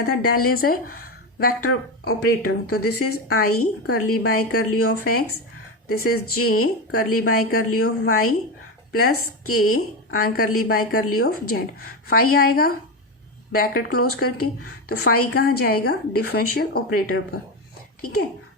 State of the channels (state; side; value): normal; both; correlation 0.16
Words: था, del is a vector operator. तो this is i curly by curly of x, this is j curly by curly of y plus k and curly by curly of z. Phi आएगा bracket close करके, तो phi कहाँ जाएगा, differential operator पर, ठीक है।